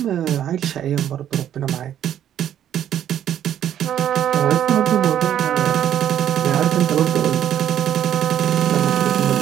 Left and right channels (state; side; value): quieter; left; 10.5 dB